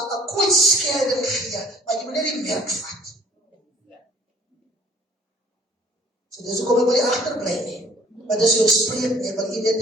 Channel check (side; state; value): both; normal; correlation 0.55